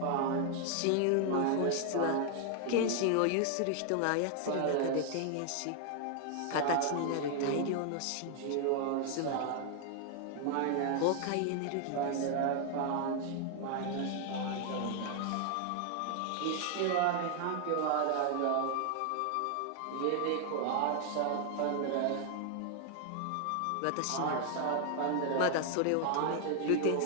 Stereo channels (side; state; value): both; different; correlation 0.00